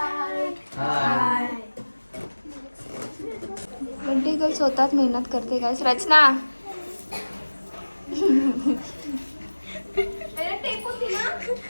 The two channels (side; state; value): both; inverted; correlation -1.00